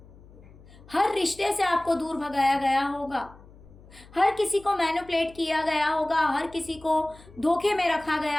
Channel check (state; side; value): noise; left; hum, 22 dB below the sound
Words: हर रिश्ते से आपको दूर भगाया गया होगा, हर किसी को मैनिपुलेट किया गया होगा, हर किसी को धोखे में रखा